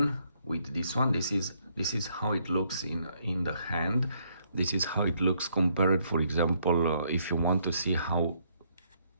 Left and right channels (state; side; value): inverted; both; correlation -0.71